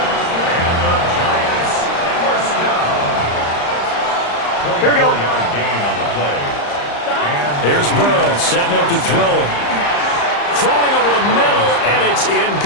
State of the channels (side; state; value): right; late; 35 ms